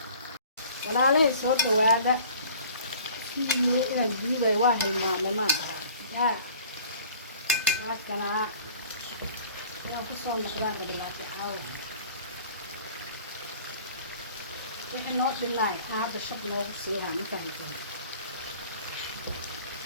walaalahay soo dhawaada إلى الجيبة واهي ما يا هكذا لا تصور مقدار بالله حاول إحنا نوع بالله هذا الشط نوع بسيها مكان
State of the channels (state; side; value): inverted; both; correlation -0.49